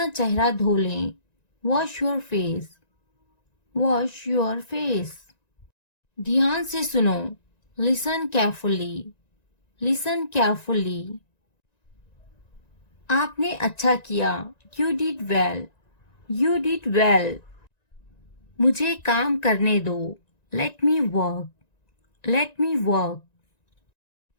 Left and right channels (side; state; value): right; late; 1.9 ms